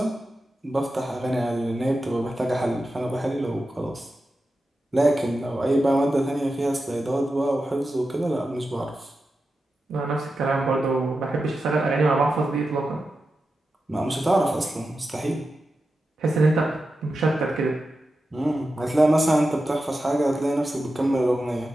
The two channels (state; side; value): normal; both; correlation 0.91